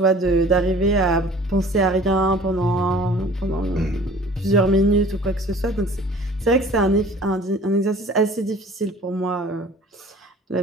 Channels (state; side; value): normal; both; correlation 0.47